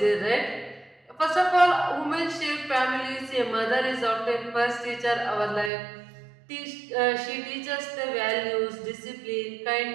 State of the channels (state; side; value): drops out; left; at 5.7 s